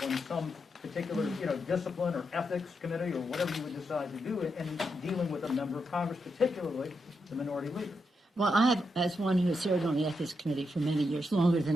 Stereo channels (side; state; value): both; normal; correlation 0.83